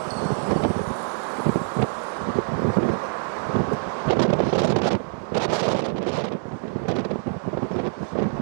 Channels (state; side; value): silent; left; digital silence